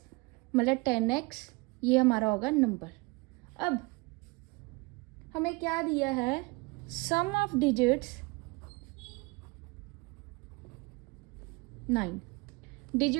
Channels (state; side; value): quieter; left; 26.1 dB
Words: मतलब 10x, ये हमारा होगा नंबर। अब हमें क्या दिया है, सम ऑफ डिजिट्स 9।